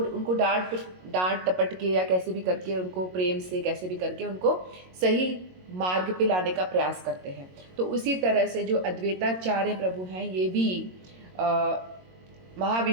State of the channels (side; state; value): left; late; 22 ms